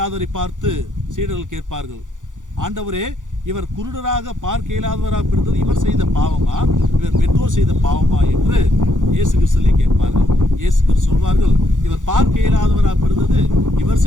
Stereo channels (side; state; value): left; late; 0.87 ms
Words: பார்த்து சீடர்கள் கேட்பார்கள், ஆண்டவரே, இவர் குருடராக பார்க்க இயலாதவராக பிறந்தது இவர் செய்த பாவமா, இவர் பெற்றோர் செய்த பாவமா என்று இயேசு கிறிஸ்துவை கேட்பார்கள். இயேசு கிறிஸ்து சொல்வார்கள், இவர் பார்க்க இயலாதவராக பிறந்தது இவர்